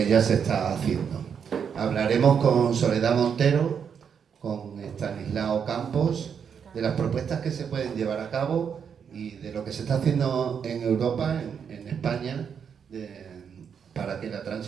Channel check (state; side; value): quieter; left; 7.2 dB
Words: ya se está haciendo. Hablaremos con Soledad Montero, con Estanislao Campos, de las propuestas que se pueden llevar a cabo y de lo que se está haciendo en Europa, en España, para que la